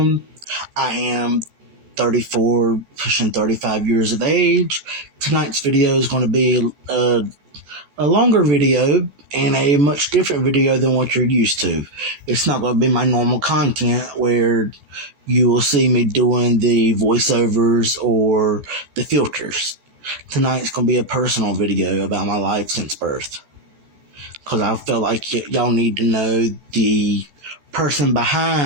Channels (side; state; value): left; late; 14 ms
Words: I am 34, pushing 35 years of age. Tonight's video is going to be a longer video and a much different video than what you're used to. It's not going to be my normal content where you will see me doing the voiceovers or the filters. Tonight's going to be a personal video about my life since birth. Because I felt like y'all need to know the person